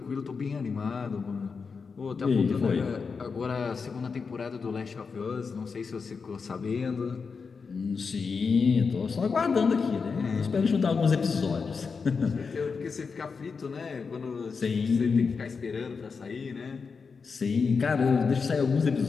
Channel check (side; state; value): right; quieter; 5.2 dB